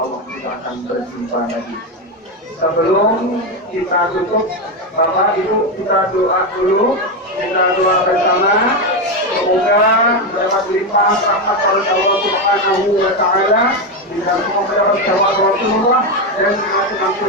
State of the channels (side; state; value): both; normal; correlation 0.10